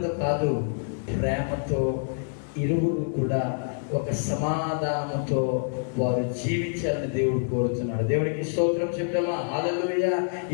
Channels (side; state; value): right; silent; digital silence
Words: కాదు, ప్రేమతో ఇరువురు కూడా ఒక సమాధానంతో వారు జీవించాలని దేవుడు కోరుతున్నాడు. దేవుడికి స్తోత్రం చెప్తామా, హల్లెలూయా.